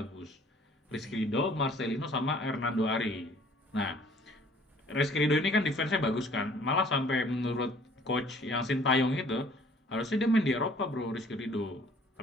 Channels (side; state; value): both; normal; correlation 0.55